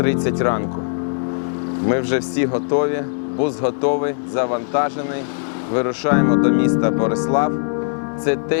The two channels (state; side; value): silent; right; 66 dB below the other